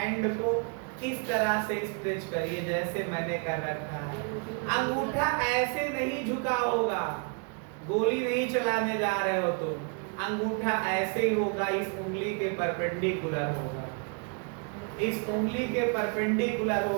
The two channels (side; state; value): left; quieter; 38.6 dB